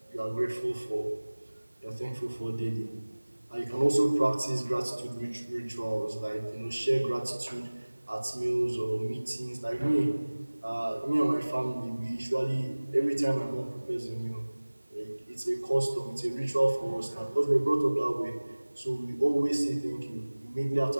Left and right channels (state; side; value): inverted; both; correlation -1.00